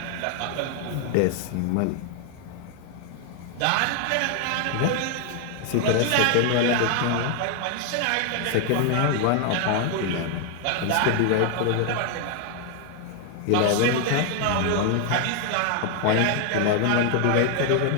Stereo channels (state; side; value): different; both; correlation 0.00